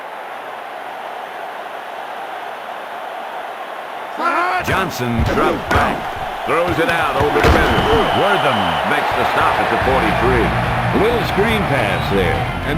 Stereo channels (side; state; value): both; identical; correlation 1.00